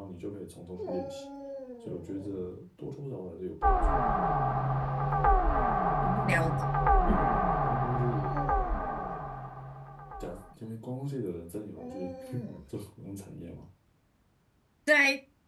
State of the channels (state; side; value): identical; both; correlation 1.00